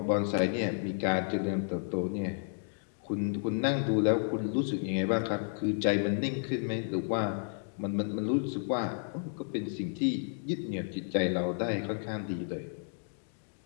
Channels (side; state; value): right; silent; digital silence